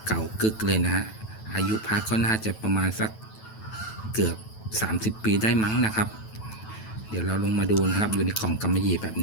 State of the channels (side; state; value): right; late; 9.1 ms